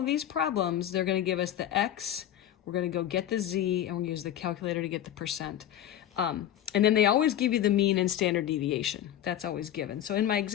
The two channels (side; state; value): right; quieter; 11.4 dB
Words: these problems, they're going to give us the X. We're going to go get the Z, and we're going to use the calculator to get the percent. And then they always give you the mean and standard deviation. That's always given. So in my